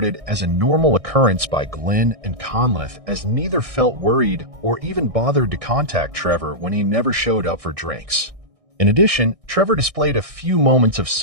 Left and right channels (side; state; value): left; late; 1.6 ms